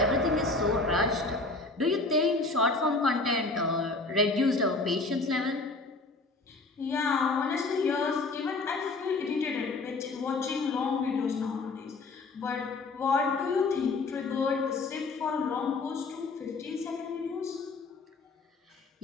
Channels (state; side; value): quieter; right; 3.5 dB